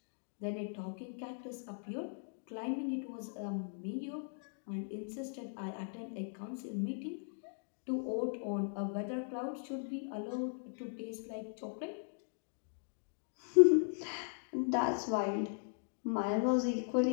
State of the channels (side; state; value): right; silent; digital silence